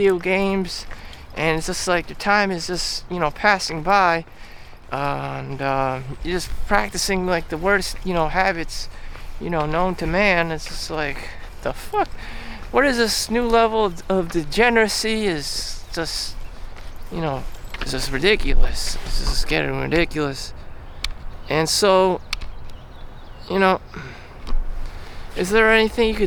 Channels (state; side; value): identical; both; correlation 1.00